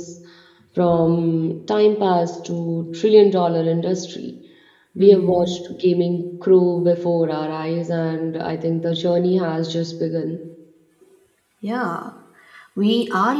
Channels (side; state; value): both; identical; correlation 1.00